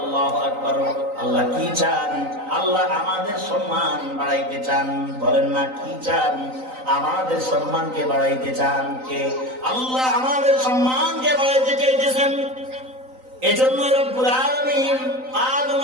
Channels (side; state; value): left; late; 3.9 ms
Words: আকবার। আল্লাহ কি চান? আল্লাহ আমাদের সম্মান বাড়াইতে চান। বলেন না, কি চান? আমাদের সম্মানকে বাড়াইতে চান। কে? আল্লাহ আমাদের সম্মানকে বাড়াইতে চাইতেছেন। এজন্য রব্বুল আলামিন আদম